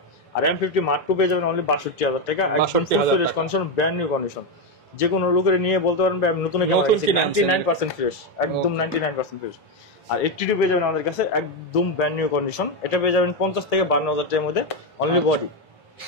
আর M50 Mark II পেয়ে যাবেন অনলি 62000 টাকা, একদম full fresh condition, brand new condition. যে কোনো লোকের নিয়ে বলতে পারেন আমি নতুন ক্যামেরা 99% ফ্রেশ, একদম 99% ফ্রেশ। আর 82 পেয়ে যাবেন আমাদের কাছে একদম ব্র্যান্ড নিউ কন্ডিশন। এটা পেয়ে যাবেন 50 থেকে 52000 টাকার মধ্যে অনলি বডি।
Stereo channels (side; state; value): both; normal; correlation 0.07